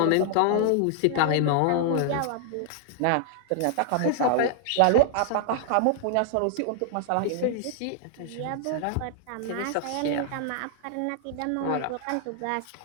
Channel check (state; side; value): different; both; correlation 0.00